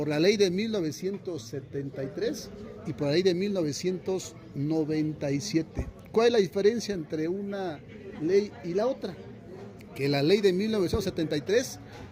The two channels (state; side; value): identical; both; correlation 1.00